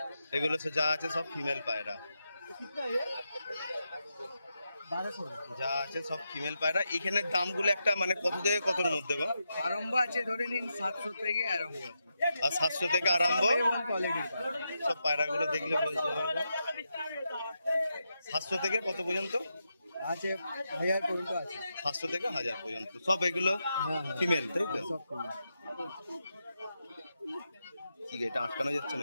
এগুলো যা আছে সব ফিমেল পায়রা, যা আছে সব ফিমেল পায়রা। এখানে দামগুলো একটা মানে কত থেকে কতর মধ্যে গো? আরম্ভ আছে ধরে নিন 700 থেকে আরম্ভ আছে। আর 700 থেকে আরম্ভ কোয়ালিটির সব পায়রাগুলো দেখলে বলতে পারবো। 700 থেকে কত পর্যন্ত আছে? 1000 পর্যন্ত আছে। 700 থেকে 1000 পর্যন্ত সব এগুলো ফিমেল, তাই তো? সব female। ঠিক আছে, এটা আটকানো যাচ্ছে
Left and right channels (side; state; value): both; inverted; correlation -0.86